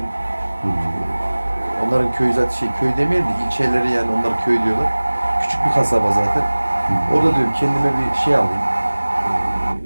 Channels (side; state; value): both; inverted; correlation -1.00